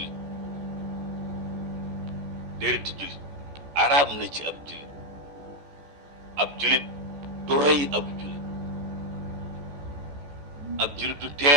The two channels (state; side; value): late; left; 14 ms